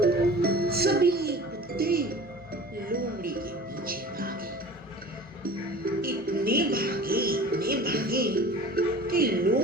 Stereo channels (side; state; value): both; normal; correlation 0.41